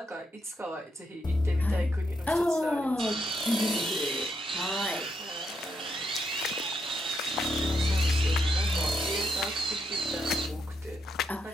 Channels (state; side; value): normal; both; correlation 0.79